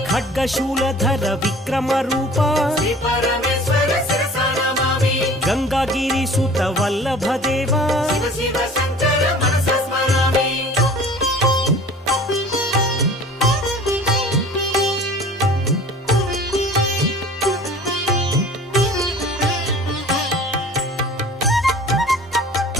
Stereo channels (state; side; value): normal; both; correlation 0.45